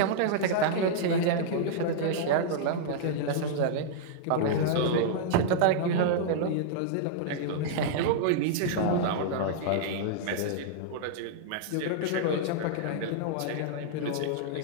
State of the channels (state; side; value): different; both; correlation -0.02